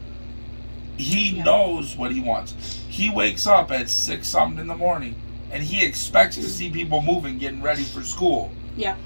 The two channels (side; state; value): both; inverted; correlation -1.00